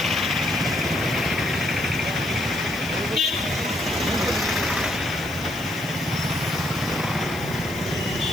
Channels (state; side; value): noise; left; hiss, 17 dB below the sound